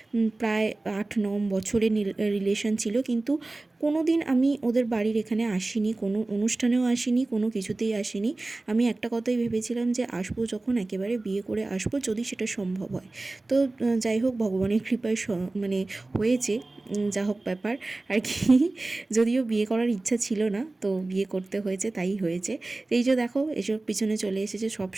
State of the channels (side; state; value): left; quieter; 3.1 dB